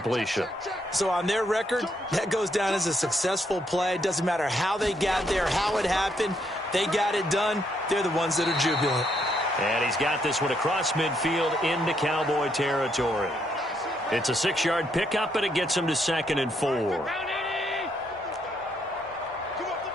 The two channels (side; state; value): both; normal; correlation 0.74